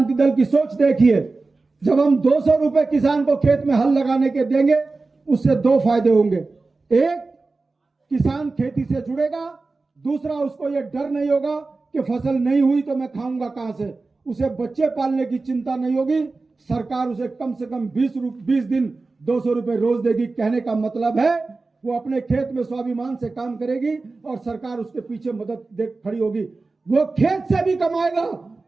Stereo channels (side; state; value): left; quieter; 3.7 dB